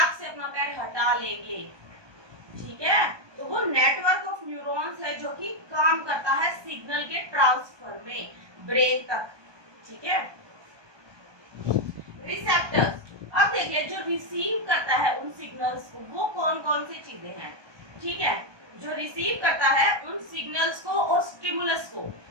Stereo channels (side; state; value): left; late; 1.2 ms